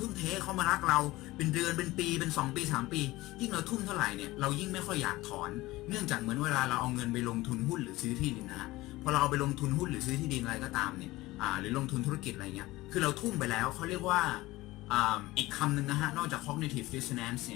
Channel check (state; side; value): quieter; right; 19.0 dB